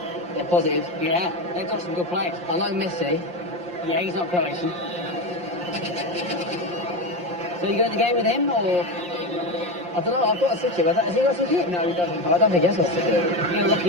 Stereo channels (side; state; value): left; late; 5.7 ms